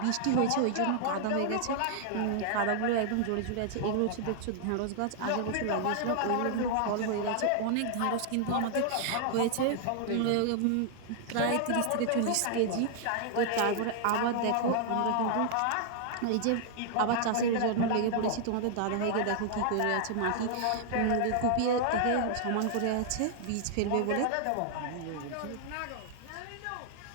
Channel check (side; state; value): both; different; correlation -0.01